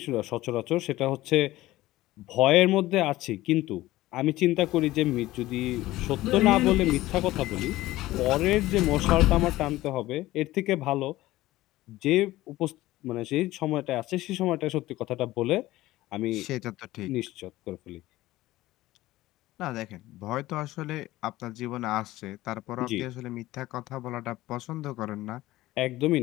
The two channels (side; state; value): right; quieter; 17.0 dB